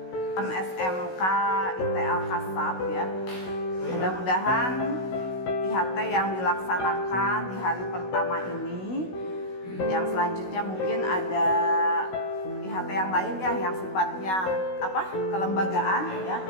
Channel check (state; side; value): late; right; 16 ms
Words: SMK IT Al-Kasab ya. Mudah-mudahan IHT yang dilaksanakan di hari pertama ini, yang selanjutnya mungkin ada IHT yang lain ya, yang sifatnya kelembagaan ya,